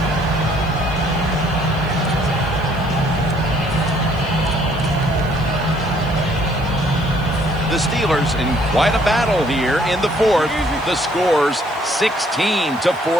The Steelers in quite a battle here in the 4th. The score's 16-14.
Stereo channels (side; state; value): left; noise; hiss, 26 dB below the sound